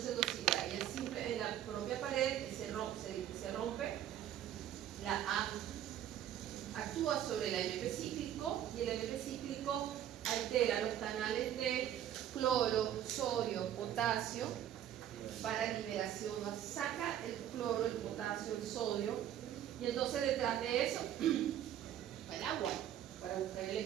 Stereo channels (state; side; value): quieter; left; 11.0 dB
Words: se endocida, ella simple en la propia pared se rompe, la A actúa sobre el AMP cíclico y el AMP cíclico altera los canales de cloro, sodio, potasio para liberación, saca el cloro, el potasio, el sodio, y entonces detrás de eso el agua para buscar el